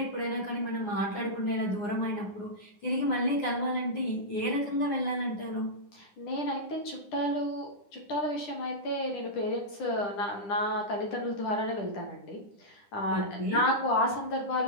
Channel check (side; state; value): right; late; 9.9 ms